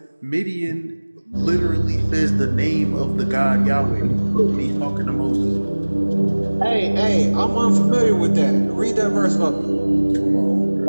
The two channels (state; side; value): inverted; both; correlation -1.00